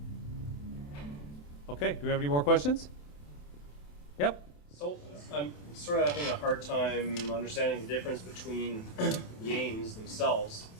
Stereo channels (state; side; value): late; right; 28 ms